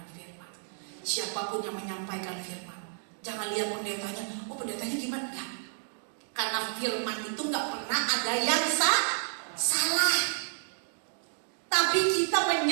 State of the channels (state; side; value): silent; left; digital silence